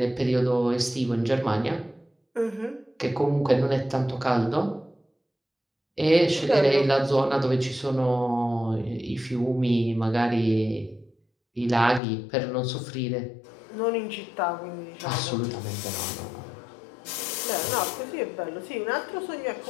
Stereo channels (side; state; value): right; drops out; at 12.0 s